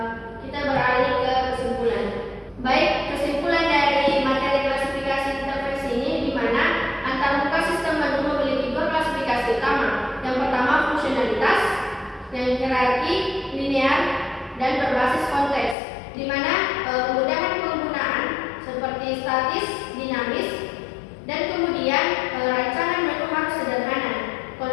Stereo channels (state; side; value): drops out; right; at 15.8 s